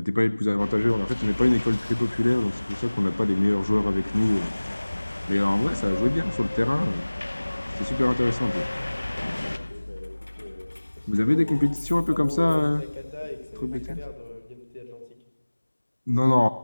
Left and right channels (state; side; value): inverted; both; correlation -1.00